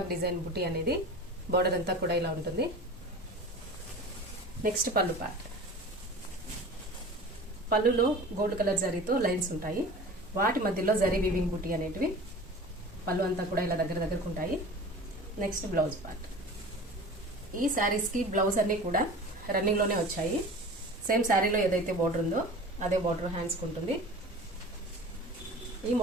డిజైన్ బుటీ అనేది బోర్డర్ అంతా కూడా ఇలా ఉంటుంది. నెక్స్ట్ పళ్ళు పార్ట్. పళ్ళులో గోల్డ్ కలర్ జరీతో లైన్స్ ఉంటాయి. వాటి మధ్యలో జరీ వీవింగ్ బుటీ అనేటివి పళ్ళు అంతా కూడా ఇలా దగ్గరకు ఉంటాయి. Next blouse part. ఈ శారీస్ కి బ్లౌజ్ అన్ని కూడా రన్నింగ్ లోనే వచ్చాయి. సేమ్ శారీలో ఏదైతే బోర్డర్ ఉందో అదే బోర్డర్ హ్యాండ్స్ కు ఉంటుంది. ఈ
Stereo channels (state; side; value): normal; both; correlation 0.38